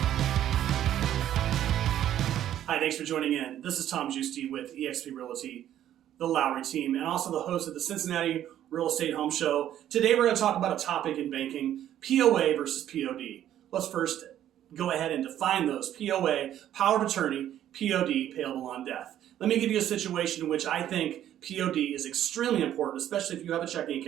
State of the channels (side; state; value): left; quieter; 11.5 dB